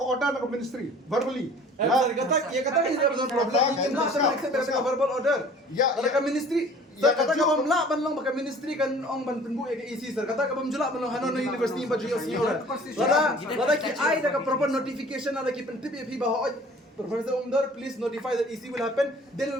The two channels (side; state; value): both; normal; correlation 0.49